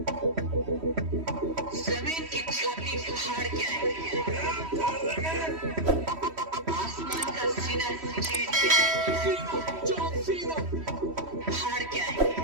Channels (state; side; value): late; left; 3.1 ms